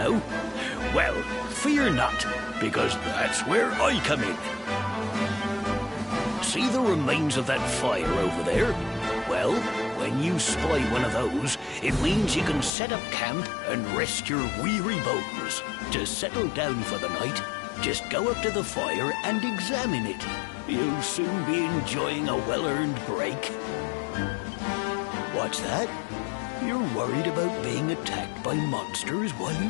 Well, fear not, because that's where I come in. See the remains of that fire over there? Well, when you spy one of those, it means you can set up camp and rest your weary bones. To settle down for the night, just go up to the fire and examine it. You'll soon be enjoying a well-earned break. What's that? You're worried about being attacked by monsters while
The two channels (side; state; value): right; drops out; at 12.7 s